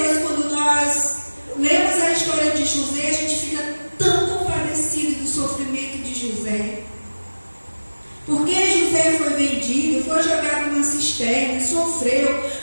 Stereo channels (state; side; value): inverted; both; correlation -1.00